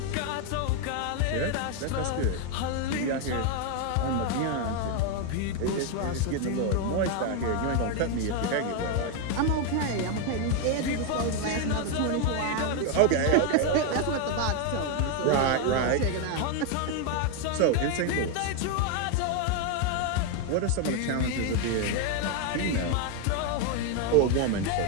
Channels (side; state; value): both; different; correlation 0.01